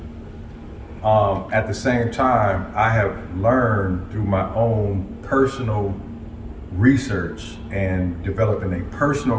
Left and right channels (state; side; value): identical; both; correlation 1.00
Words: At the same time, I have learned through my own personal research and developing a personal